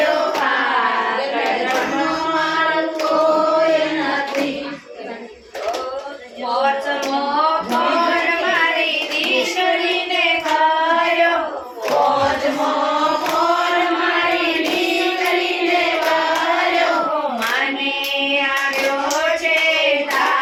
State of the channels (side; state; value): both; identical; correlation 1.00